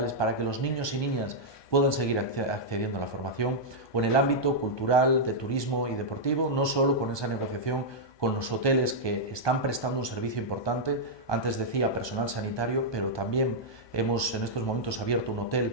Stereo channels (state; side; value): late; right; 1.2 ms